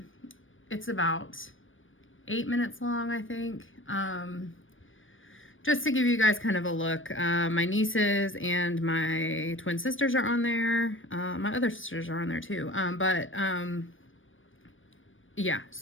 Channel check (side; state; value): right; late; 0.57 ms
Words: It's about 8 minutes long, I think. Just to give you guys kind of a look. My nieces and my twin sisters are on there. My other sisters are on there too. Yeah,